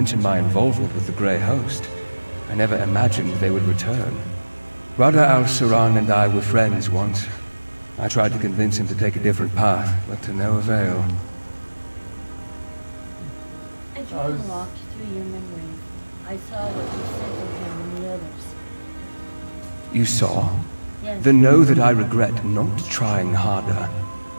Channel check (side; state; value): both; inverted; correlation -1.00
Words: my involvement with the Grey Host. I never imagined they would return. Rada al-Saran and I were friends once. I tried to convince him to take a different path, but to no avail. I tried to walk through your memories. I saw what you said to him and the others. You saw? Yes. Then know that I regret not trying harder.